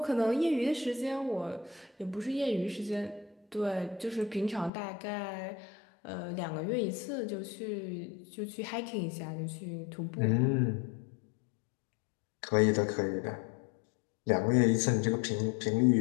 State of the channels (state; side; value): drops out; right; at 4.7 s